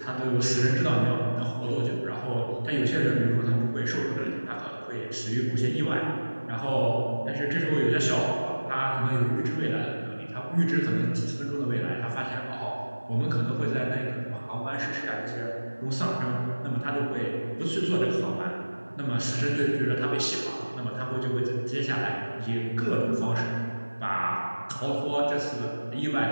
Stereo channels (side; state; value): both; inverted; correlation -1.00